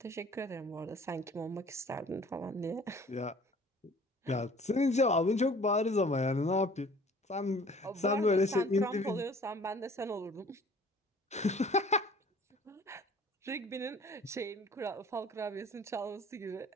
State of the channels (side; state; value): both; normal; correlation 0.51